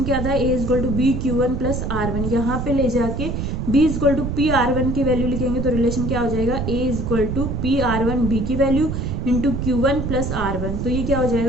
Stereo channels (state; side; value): noise; right; rumble, 3 dB below the sound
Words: क्या था, A is equal to B Q1 plus R1, यहाँ पे ले जाके B is equal to P R1 की वैल्यू लिखेंगे तो रिलेशन क्या हो जाएगा, A is equal to P R1 B की value into Q1 plus R1, तो ये क्या हो